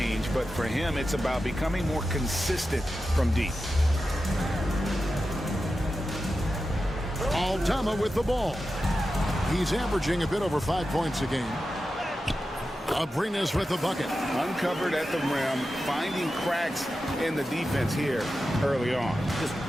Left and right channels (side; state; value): both; normal; correlation 0.91